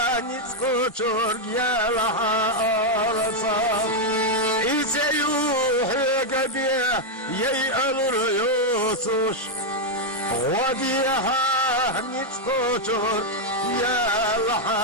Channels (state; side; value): normal; both; correlation -0.01